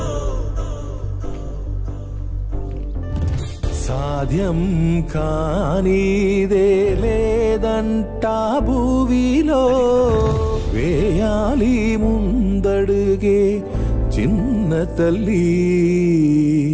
సాధ్యం కానిదే లేదంటా భూవిలో, వేయాలి ముందడుగే చిన్న తల్లి,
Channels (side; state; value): both; identical; correlation 1.00